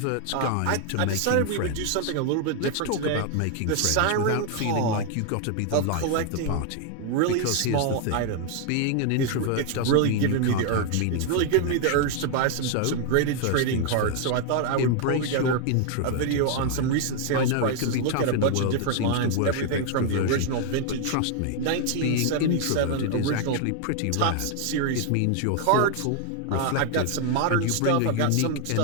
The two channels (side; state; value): both; different; correlation 0.00